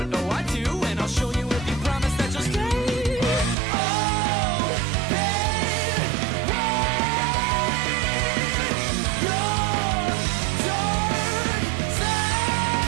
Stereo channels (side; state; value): left; drops out; at 3.6 s